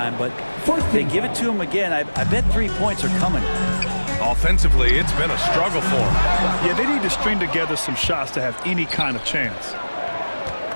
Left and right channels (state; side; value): inverted; both; correlation -1.00